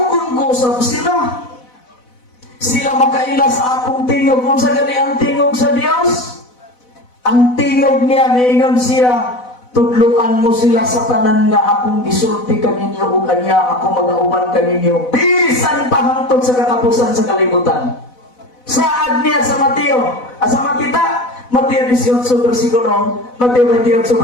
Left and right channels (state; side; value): late; right; 4.0 ms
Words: ko sa sila. Sila makaila sa akong tingog. Kung sa gani ang tingog sa Dios, ang tingog niya, naingon siya, tudluan mo sila sa tanan nga akong gisulti kaninyo o kanya ako mag-auman kaninyo. Bisan pa hangtod sa katapusan sa kalibutan. Saad niya sa Mateo, sa Matita, Mateo 18 versikulo